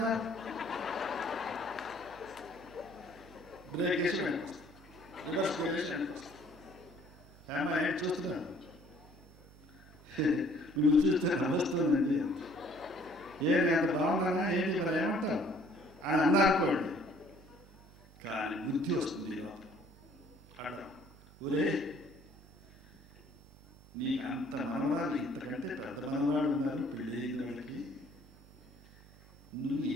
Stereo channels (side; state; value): both; normal; correlation 0.58